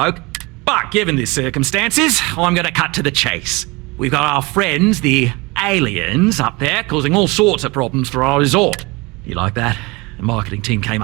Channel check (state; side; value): quieter; left; 24.9 dB